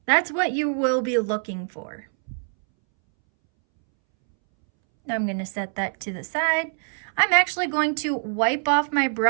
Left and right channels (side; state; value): left; silent; 63 dB below the other